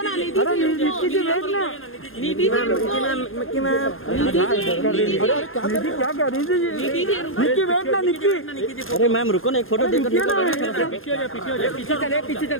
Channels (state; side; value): late; right; 0.60 ms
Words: ना निधि अरे निक्की जी वेट ना निधि जी रुको निक्की मैम निधि जी निक्की क्या कर रही थी निधि जी रुको निक्की वेट ना निक्की अरे मैम रुको ना एक फोटो देकर निक्की ना